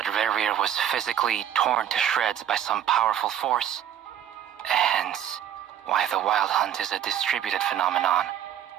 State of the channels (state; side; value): quieter; left; 10.1 dB